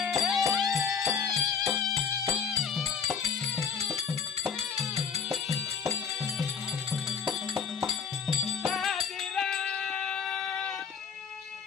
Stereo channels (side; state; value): right; quieter; 6.5 dB